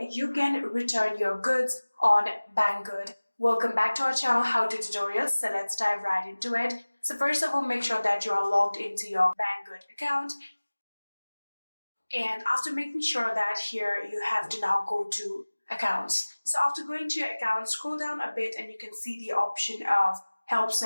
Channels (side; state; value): both; inverted; correlation -1.00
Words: can return your goods on Banggood. Welcome back to our channel How To Tutorials, so let's dive right into it. So first of all, make sure that you are logged into your Banggood account, and after making sure that here you have to now go to accounts. So after going to your account, scroll down a bit and you can see the option of Help